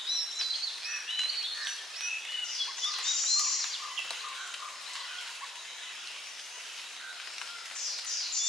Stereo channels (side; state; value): both; normal; correlation 0.68